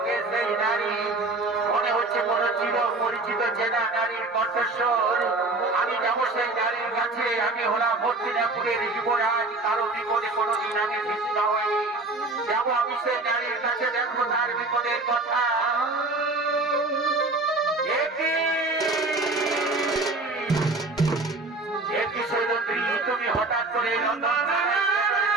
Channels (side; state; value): left; quieter; 3.2 dB